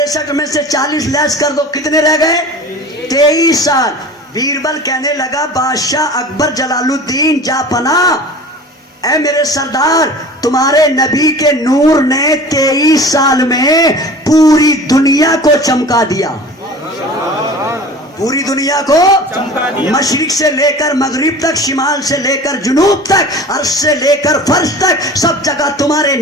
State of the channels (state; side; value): normal; both; correlation 0.40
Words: میں سے 40 لیس کر دو, کتنے رہ گئے؟ 23 سال. بیربل کہنے لگا بادشاہ اکبر جلال الدین جا پناہ، اے میرے سردار، تمہارے نبی کے نور نے 23 سال میں پوری دنیا کو چمکا دیا، پوری دنیا کو مشرق سے لے کر مغرب تک، شمال سے لے کر جنوب تک، عرش سے لے کر فرش تک، سب جگہ تمہارے